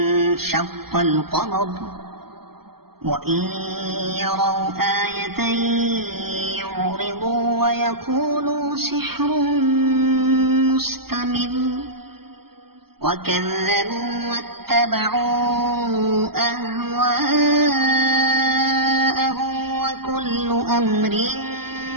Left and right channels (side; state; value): left; late; 0.95 ms